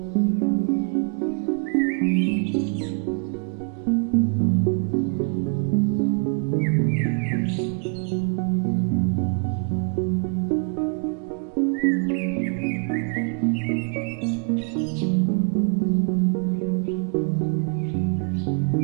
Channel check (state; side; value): quieter; left; 39.6 dB